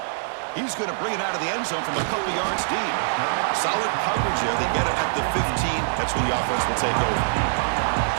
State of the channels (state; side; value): silent; left; 63 dB below the other